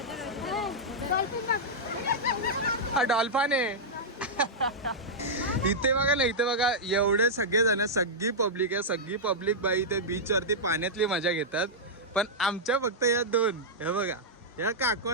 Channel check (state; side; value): normal; both; correlation -0.08